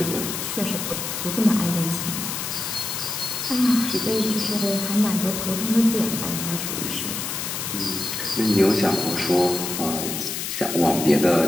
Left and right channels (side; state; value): left; noise; hiss, 4 dB below the sound